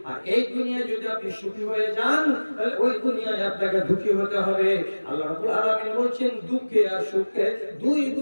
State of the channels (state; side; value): inverted; both; correlation -1.00